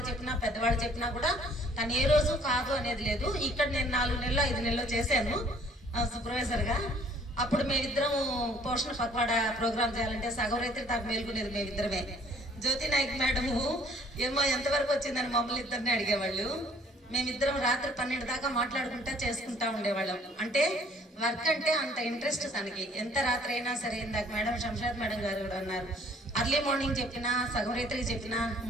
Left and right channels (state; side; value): normal; both; correlation 0.58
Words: చెప్పినా పెద్దవాళ్ళు చెప్పినా కూడా తను ఏ రోజు కాదు అనేది లేదు. ఇక్కడ నేను 4 నెలలు 5 నెలలు చేశాను సూపర్వైజర్గా. అప్పుడు మేమిద్దరం పోషణ పక్వాడా ప్రోగ్రామ్ చేయాలంటే సగం రైతులు దాకా మేల్కొనేది మేమిద్దరమే. జ్యోతి నాయక్ మేడము ఏమో ఎంతవరకు వచ్చిందని మమ్మల్ని ఇద్దరిని అడిగేవాళ్ళు. మేమిద్దరం రాత్రి 12 దాకా మాట్లాడుకుంటా చేసుకుంటా ఉండేవాళ్ళం. అంటే వర్క్ అంటే అంత ఇంట్రెస్ట్ తనకి. ఎంత రాత్రి అయినా సరే, ఇందాక మేడం శంషాద్ మేడం గారు కూడా అన్నారు, అర్లీ మార్నింగ్ చెప్పినా సగం రైతులకి చెప్పినా